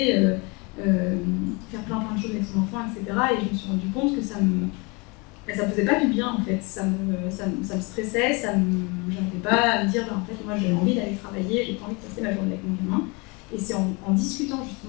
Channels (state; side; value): quieter; right; 28.6 dB